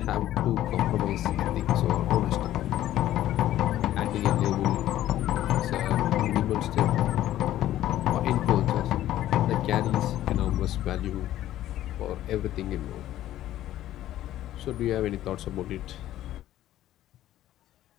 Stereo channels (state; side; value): quieter; right; 13.3 dB